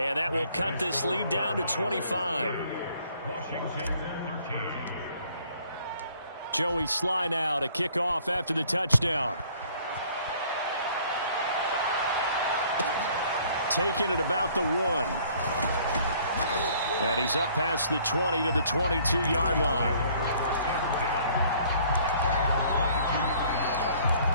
that will cut this lead down to 25. Joey Sly now to kick off after the touchdown. Taking it about the 1. And he's up past the 20 to the 22-yard line.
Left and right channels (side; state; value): both; inverted; correlation -0.58